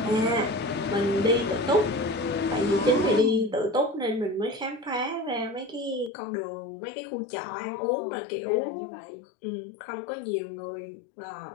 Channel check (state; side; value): drops out; right; at 6.1 s